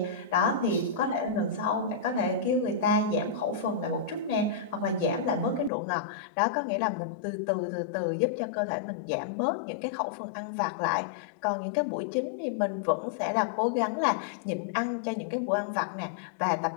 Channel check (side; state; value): right; drops out; at 5.7 s